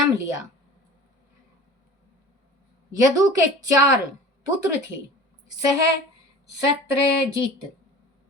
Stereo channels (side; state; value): both; normal; correlation 0.40